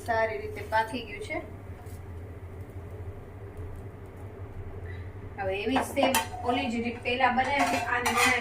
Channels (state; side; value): identical; both; correlation 1.00